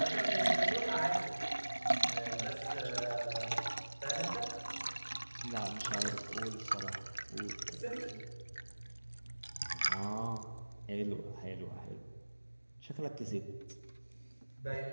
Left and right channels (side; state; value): both; inverted; correlation -1.00